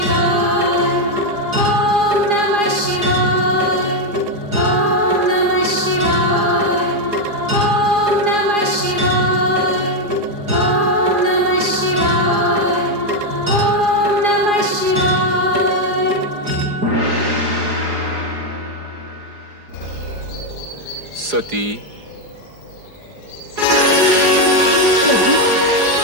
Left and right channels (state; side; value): late; left; 4.8 ms